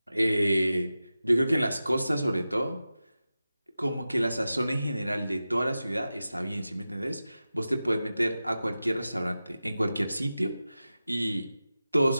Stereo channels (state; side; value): inverted; both; correlation -0.94